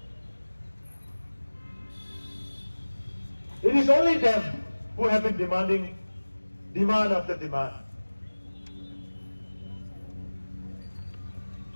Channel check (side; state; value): both; inverted; correlation -1.00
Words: It is only them who have been demanding demand after demand.